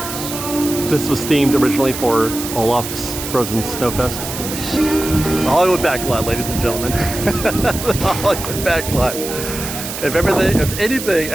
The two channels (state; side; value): noise; right; hiss, 7 dB below the sound